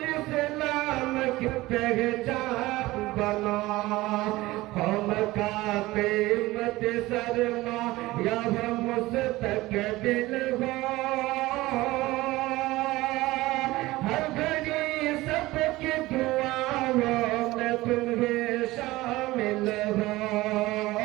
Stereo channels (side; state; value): left; quieter; 18.8 dB